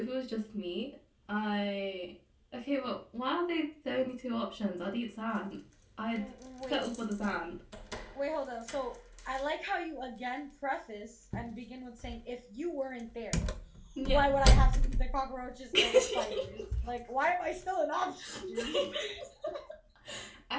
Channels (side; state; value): both; identical; correlation 1.00